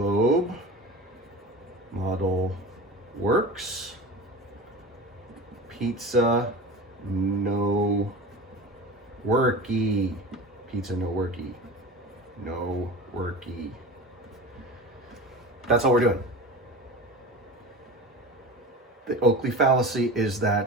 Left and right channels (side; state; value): both; normal; correlation 0.32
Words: model works. Pizza no worky. Pizza no worky. No worky. That's all we're doing. The Oakley fallacy is